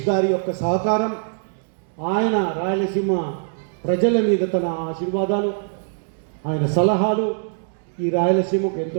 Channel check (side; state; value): left; silent; digital silence